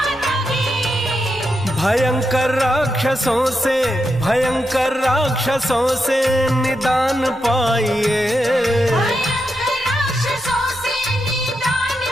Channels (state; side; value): normal; both; correlation 0.85